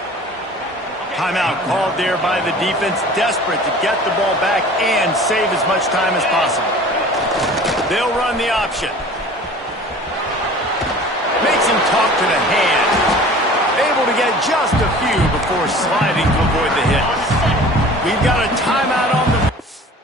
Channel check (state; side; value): normal; both; correlation 0.44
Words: Timeout called there by the defense, desperate to get the ball back and save as much time as possible. They'll run the option. Makes him talk to the hand. Able to get just a few before sliding to avoid the hit. We've got a timeout on the...